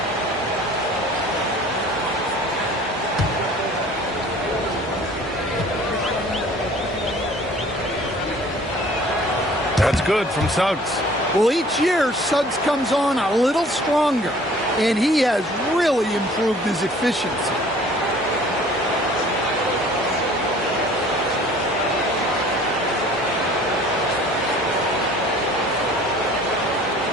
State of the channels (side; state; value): both; normal; correlation 0.51